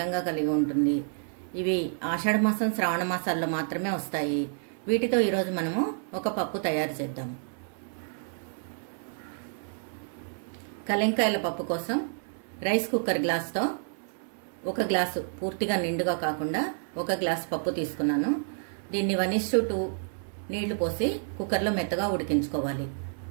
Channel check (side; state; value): left; silent; 58 dB below the other